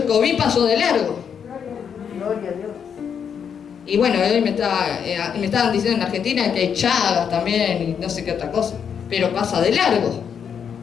COVID pasó de largo. Gloria a Dios. Y bueno, hoy me estaban diciendo en Argentina que hay chagas también y no sé qué otra cosa. Pero pasa de largo.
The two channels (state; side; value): quieter; right; 7.5 dB